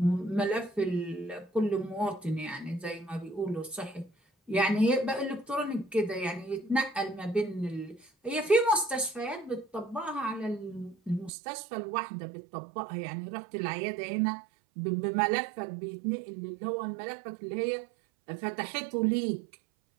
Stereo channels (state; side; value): drops out; left; at 11.3 s